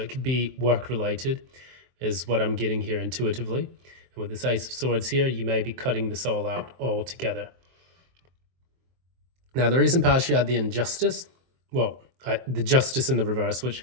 could be work related, is what I'm getting here intuitively. And with this Ace of Swords here, you may be cutting this all out altogether. Now, the recent past, you had the injustice. Well, the justice in the reverse, which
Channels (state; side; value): late; left; 23 ms